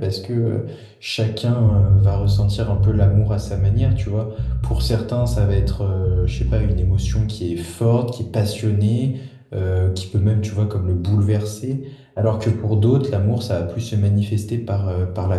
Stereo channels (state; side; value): identical; both; correlation 1.00